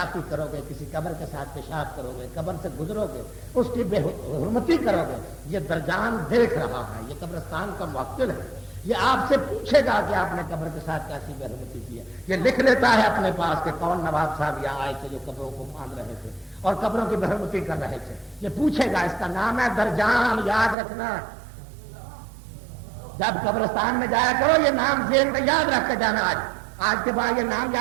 کرو گے، کسی قبر کے ساتھ پیشاب کرو گے، قبر سے گزرو گے، اس کی بے حرمتی کرو گے، یہ درجان دیکھ رہا ہے، یہ قبرستان کا موکل ہے. یہ آپ سے پوچھے گا کہ آپ نے قبر کے ساتھ کیسی بے حرمتی کی ہے. یہ لکھ لیتا ہے اپنے پاس کہ کون نواب صاحب یہاں آئے تھے جو قبروں کو باندھ رہے تھے اور قبروں کی بے حرمتی کر رہے تھے. یہ پوچھے گا، اس کا نام ہے درجان. یاد رکھنا، جب قبرستان میں جایا کرو یہ نام ذہن میں یاد رکھ کے جانا. آج کے بعد یہ نام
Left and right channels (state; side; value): drops out; left; at 20.8 s